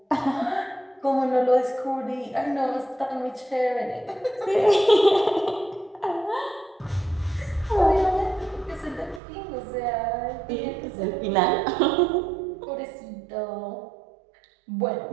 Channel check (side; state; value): left; drops out; at 9.2 s